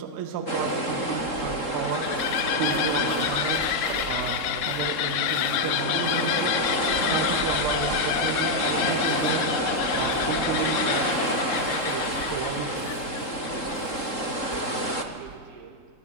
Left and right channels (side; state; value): right; late; 3.8 ms